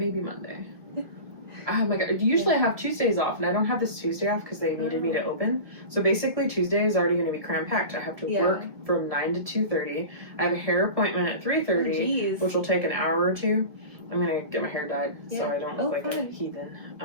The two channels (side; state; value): left; late; 1.5 ms